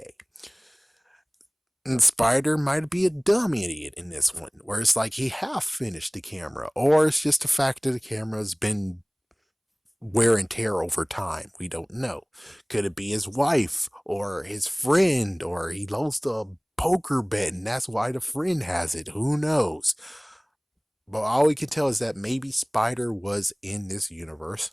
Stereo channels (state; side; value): identical; both; correlation 1.00